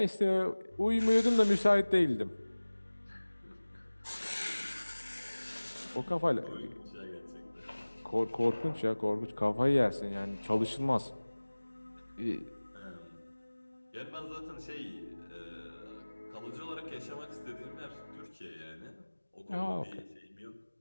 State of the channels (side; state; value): both; inverted; correlation -1.00